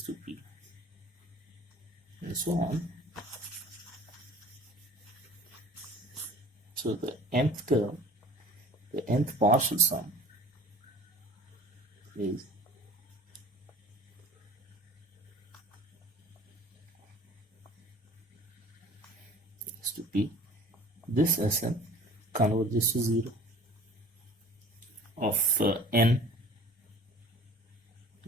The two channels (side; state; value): both; normal; correlation 0.46